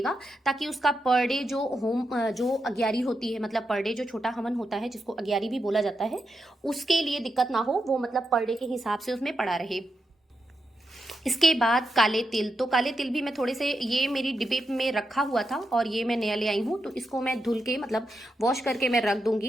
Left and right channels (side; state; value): both; normal; correlation 0.86